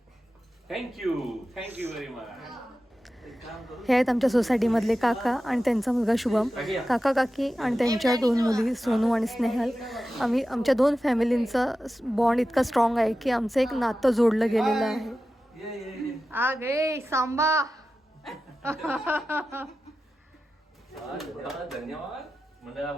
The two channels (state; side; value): normal; both; correlation 0.93